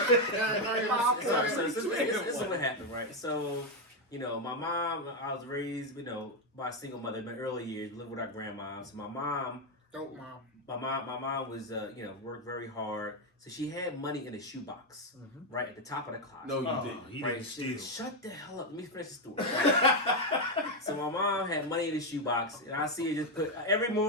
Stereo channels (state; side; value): normal; both; correlation 0.05